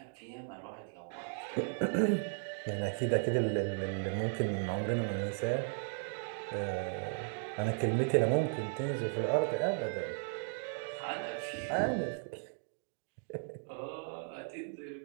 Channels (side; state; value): left; silent; 54 dB below the other